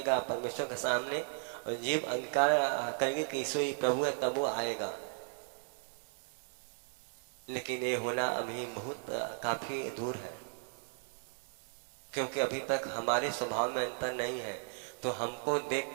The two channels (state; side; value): silent; left; 54 dB below the other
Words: परमेश्वर के सामने और जीव अंगीकार करेगी कि यीशु ही प्रभु है, तब वो आएगा। लेकिन ये होना अभी बहुत काफी दूर है, क्योंकि अभी तक हमारे स्वभाव में अंतर नहीं है। तो हमको